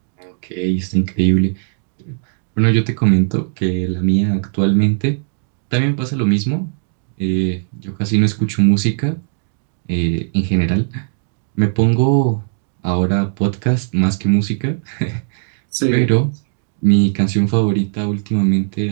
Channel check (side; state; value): left; silent; digital silence